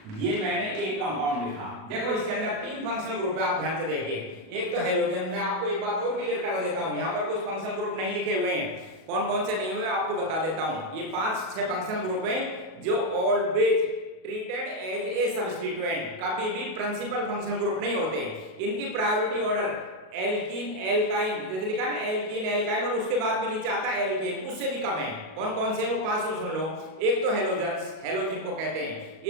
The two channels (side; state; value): left; late; 37 ms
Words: ये मैंने एक कंपाउंड लिखा, देखो इसके अंदर 3 फंक्शनल ग्रुप है, आप ध्यान से देखिए। एक तो हेलोजन, मैं आपको एक बात और क्लियर करा देता हूं, यहां पर कुछ फंक्शनल ग्रुप नहीं लिखे हुए हैं, कौन कौन से नहीं हुए आपको बता देता हूं। ये 5-6 फंक्शनल ग्रुप हैं जो always treated as a substituent, कभी भी प्रिंसिपल फंक्शनल ग्रुप नहीं होते। इनकी प्रायोरिटी ऑर्डर एल्कीन, एल्काइन, जैसे लिखा है ना एल्कीन, एल्काइन, और उसके बाद में नीचे आता है एल्केन, उससे भी कम है। कौन कौन से हैं वो 5 सुन लो। एक तो हेलोजन्स, हेलोजन को कहते हैं।